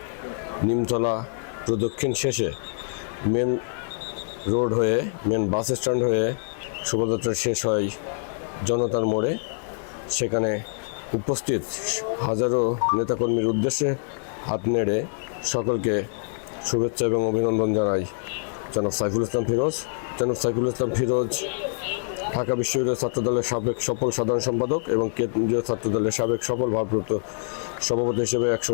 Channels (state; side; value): silent; right; 62 dB below the other